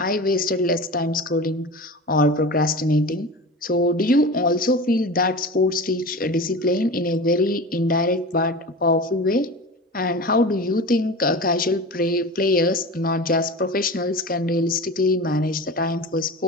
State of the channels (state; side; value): normal; both; correlation 0.31